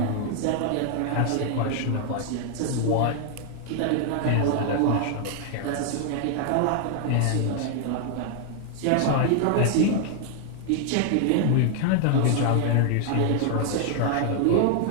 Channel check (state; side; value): different; both; correlation 0.00